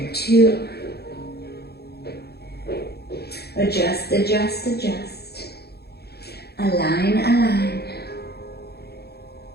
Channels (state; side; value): late; right; 0.47 ms